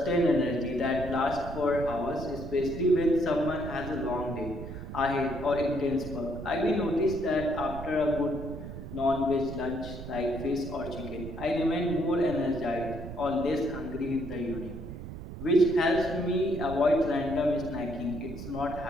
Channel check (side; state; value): right; noise; rumble, 10 dB below the sound